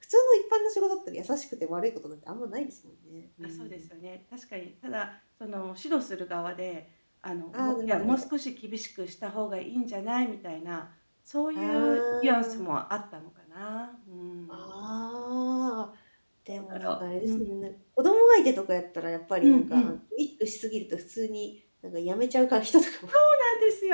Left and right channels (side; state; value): both; inverted; correlation -1.00